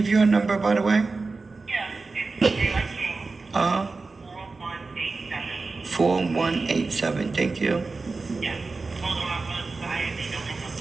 you a number, by the way? Yeah, it's Daylight King, 4187. 4187. Thank you. Yeah. Hold on, I'm gonna decide if they don't hang up,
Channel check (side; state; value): left; quieter; 3.9 dB